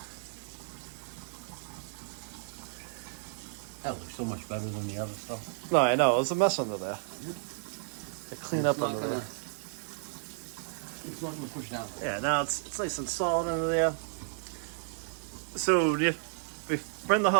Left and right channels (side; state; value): left; silent; digital silence